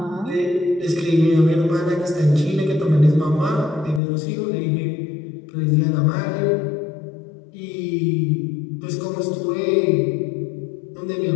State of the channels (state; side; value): drops out; right; at 4.0 s